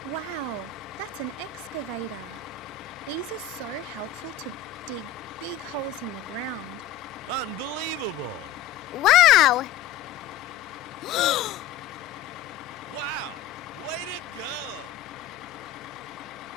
Wow, that's an excavator. These are so helpful to dig big holes in the ground. Unbelievable! Wow! Wow! Way to go!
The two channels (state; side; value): quieter; right; 8.6 dB